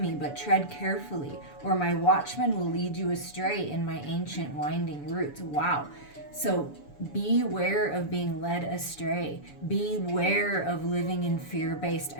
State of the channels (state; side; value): late; right; 7.0 ms